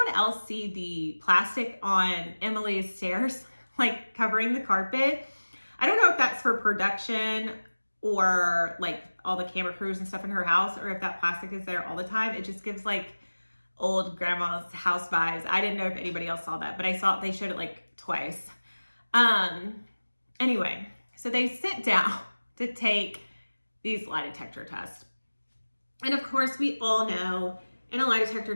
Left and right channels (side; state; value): both; inverted; correlation -1.00